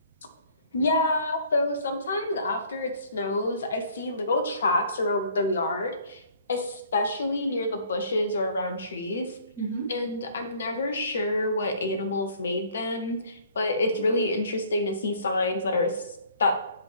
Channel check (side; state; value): both; inverted; correlation -0.56